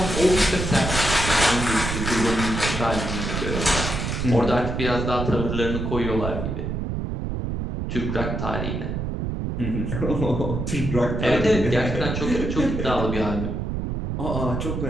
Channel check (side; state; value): right; noise; rumble, 3 dB below the sound